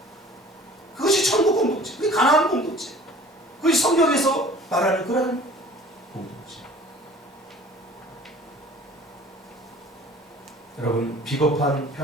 그것이 천국 공동체, 그게 가나안 공동체, 그것이 성경에서 말하는 그러한 공동체. 여러분, 비겁한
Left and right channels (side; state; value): both; normal; correlation 0.48